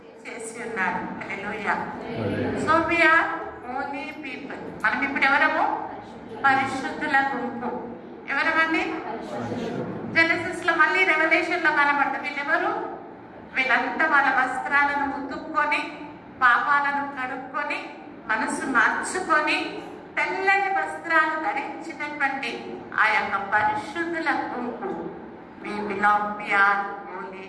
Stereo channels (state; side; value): identical; both; correlation 1.00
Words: చేసి ఉన్నాడు. Hallelujah. So we are holy people. మనం ఇప్పుడు ఎవరము? పరిశుద్ధుల గుంపు. ఎవరమండి? జెనసిస్ లో మళ్ళీ రెవల్యూషన్ లో కనబడతాం. వీళ్ళెవరు? వీళ్ళంతా వాళ్ళ వస్త్రాలను ఉతుక్కొని, పాపాలను కడుక్కొని, మనసు మార్చుకొని, తెల్లని వస్త్రాలు ధరించినటువంటి ఆ యొక్క పరిశుద్ధుల గుంపు. We belong, we are holy